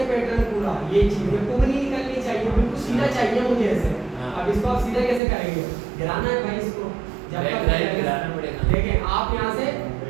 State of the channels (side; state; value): left; drops out; at 5.2 s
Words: पैटर्न पूरा, ये चीज ये कुछ नहीं निकलनी चाहिए, बिल्कुल सीधा चाहिए मुझे ऐसे। अब इसको आप सीधा कैसे करेंगे, गिराना है भाई इसको, जब तक गिराना पड़ेगा। देखें आप यहाँ से,